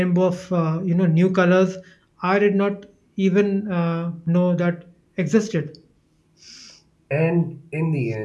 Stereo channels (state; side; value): identical; both; correlation 1.00